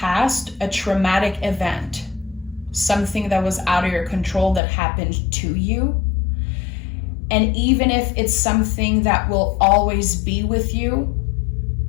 a traumatic event. Something that was out of your control that happened to you. And even if it's something that will always be with you,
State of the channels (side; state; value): right; drops out; at 4.6 s